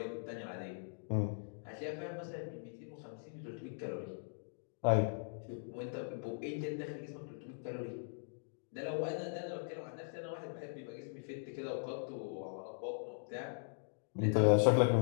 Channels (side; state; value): right; silent; digital silence